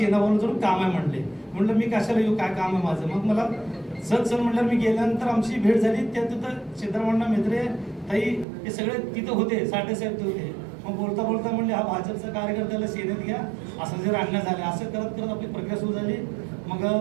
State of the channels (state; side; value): drops out; left; at 8.5 s